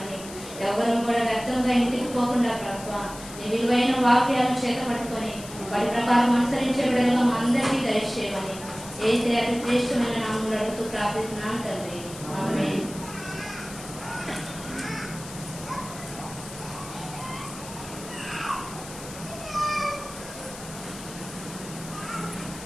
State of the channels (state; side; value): noise; left; hiss, 14 dB below the sound